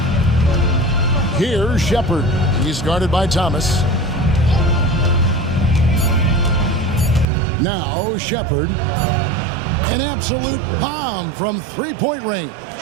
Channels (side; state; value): left; drops out; at 7.2 s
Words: Here's Shepard. He's guarded by Thomas. Now Shepard. An absolute bomb from 3-point range.